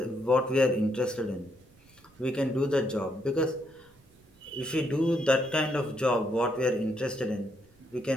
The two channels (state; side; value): noise; right; rumble, 30 dB below the sound